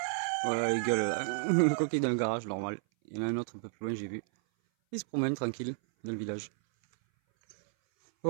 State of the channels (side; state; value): left; silent; 57 dB below the other